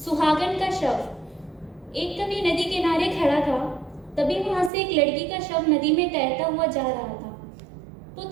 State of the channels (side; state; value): left; drops out; at 4.7 s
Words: का शव। एक कवि नदी किनारे खड़ा था, तभी वहां से एक लड़की का शव नदी में तैरता हुआ जा रहा था। तो